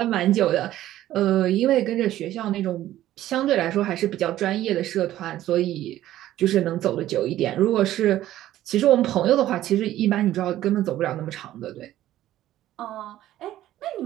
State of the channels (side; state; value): left; quieter; 13.7 dB